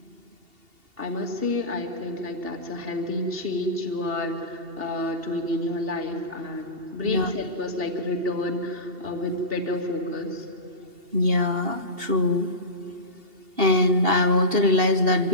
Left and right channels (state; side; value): late; left; 2.8 ms